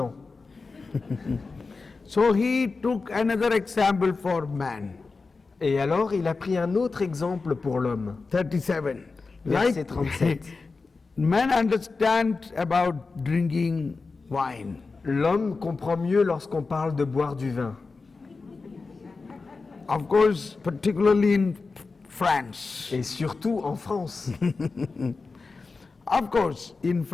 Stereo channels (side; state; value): right; quieter; 4.2 dB